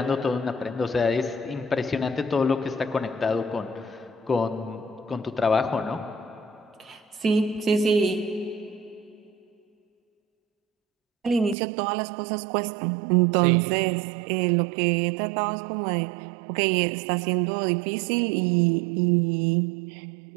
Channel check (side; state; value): left; drops out; at 11.6 s